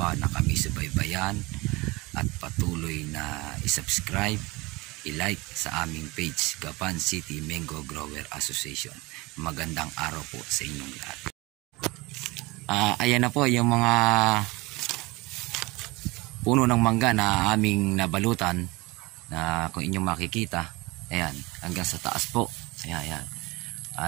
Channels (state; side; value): quieter; left; 23.2 dB